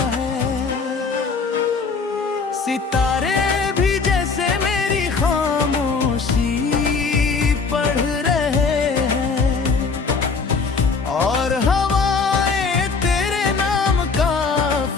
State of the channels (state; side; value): quieter; right; 4.8 dB